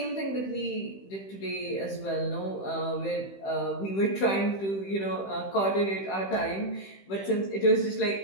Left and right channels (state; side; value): late; right; 15 ms